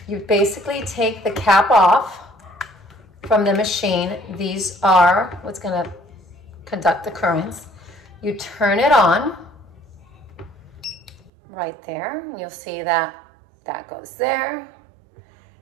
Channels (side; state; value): left; drops out; at 11.3 s